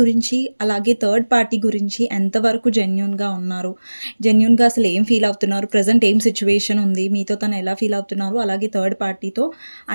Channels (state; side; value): inverted; both; correlation -1.00